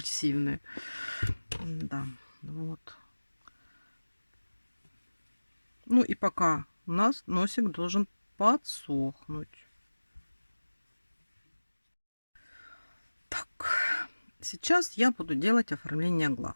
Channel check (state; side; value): inverted; both; correlation -1.00